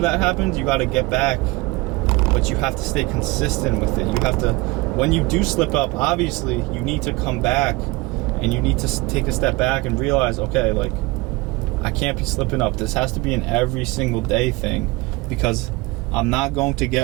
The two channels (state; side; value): quieter; left; 22.8 dB